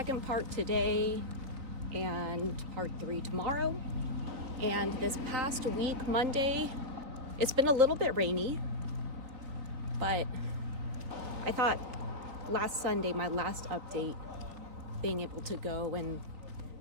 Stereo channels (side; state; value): left; late; 3.7 ms